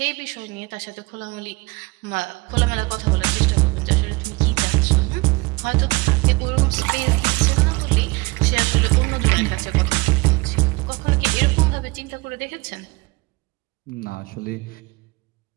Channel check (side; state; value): left; quieter; 24.8 dB